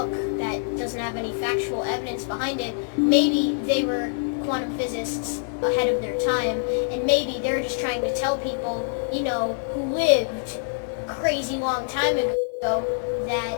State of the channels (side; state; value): right; silent; digital silence